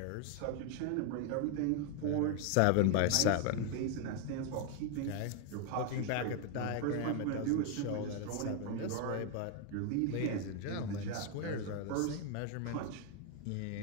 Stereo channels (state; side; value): different; both; correlation 0.00